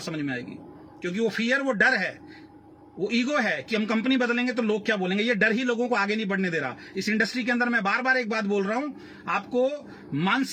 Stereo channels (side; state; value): both; identical; correlation 1.00